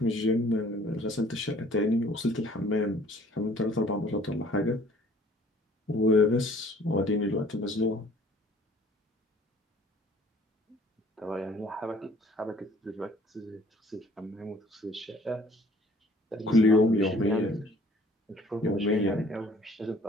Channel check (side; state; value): both; normal; correlation 0.55